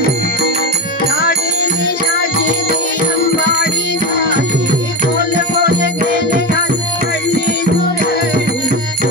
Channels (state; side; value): normal; both; correlation 0.20